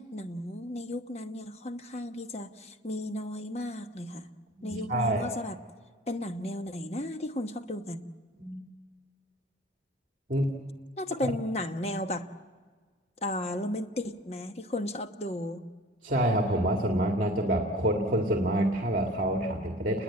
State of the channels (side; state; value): both; normal; correlation 0.45